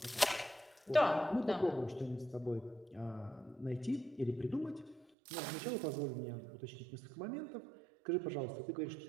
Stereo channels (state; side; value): drops out; left; at 5.1 s